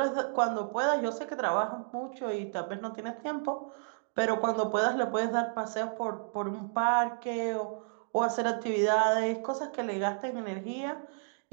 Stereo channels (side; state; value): left; silent; digital silence